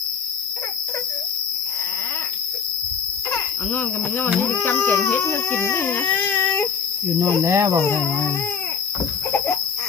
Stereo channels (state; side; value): quieter; right; 6.1 dB